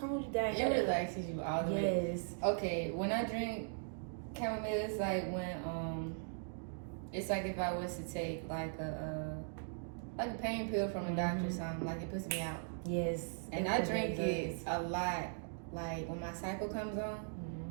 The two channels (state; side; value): silent; left; digital silence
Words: down. It relaxes you all the way. Yes. Okay, when I drink chamomile, it's like when it's like if I was to take like a pain pill from a doctor or something, like it puts me out. Yes. And I drink it a lot. Like when my cycle comes on,